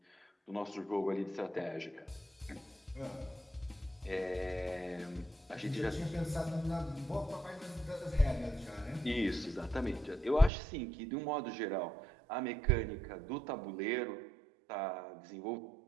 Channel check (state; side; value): drops out; left; at 10.5 s